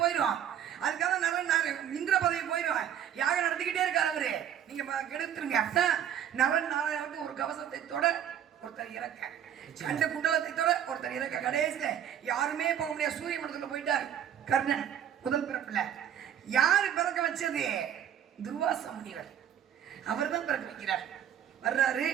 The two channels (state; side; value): quieter; left; 9.8 dB